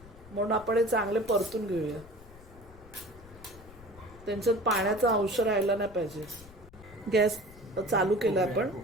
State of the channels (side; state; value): left; noise; rumble, 20 dB below the sound